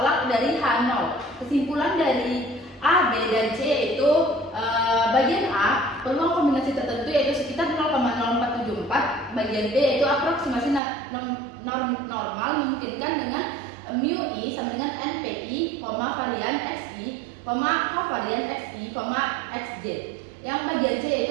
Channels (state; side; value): drops out; left; at 10.8 s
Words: dari H0. Kesimpulan dari A, B, dan C yaitu bagian A peluang kombinasi tertentu yaitu sekitar 0,0474, bagian B yaitu aproksimasi normal memungkinkan dengan mu I sama dengan NPI, varian XI, kovarian XI, XJ. Yang bagian C